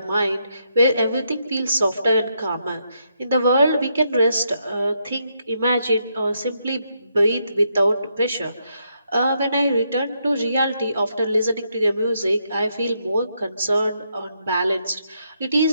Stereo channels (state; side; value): inverted; both; correlation -0.78